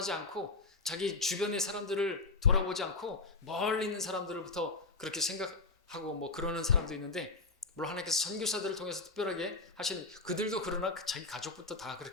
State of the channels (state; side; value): quieter; right; 3.6 dB